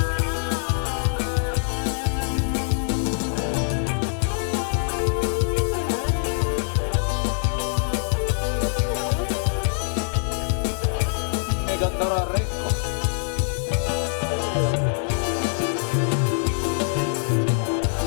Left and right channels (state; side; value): silent; right; 58 dB below the other